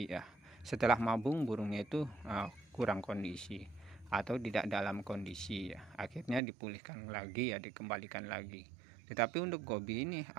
ya. Setelah mabung burungnya itu kurang kondisi atau tidak dalam kondisi ya. Akhirnya dipulihkan lagi ya, dikembalikan lagi. Tetapi untuk Gobi ini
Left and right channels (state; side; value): drops out; left; at 6.4 s